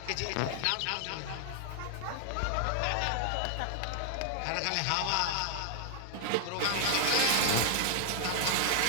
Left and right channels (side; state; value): both; different; correlation -0.01